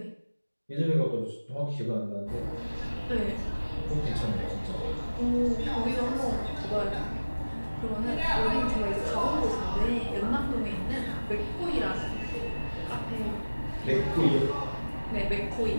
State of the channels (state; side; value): inverted; both; correlation -1.00